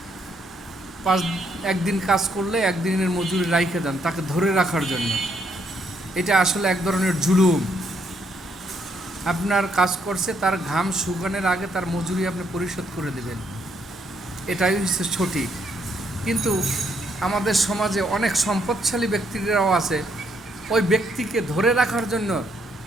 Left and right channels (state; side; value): normal; both; correlation 0.73